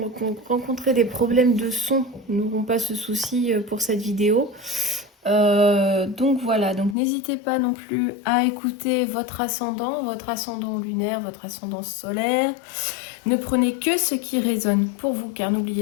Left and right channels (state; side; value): drops out; right; at 7.0 s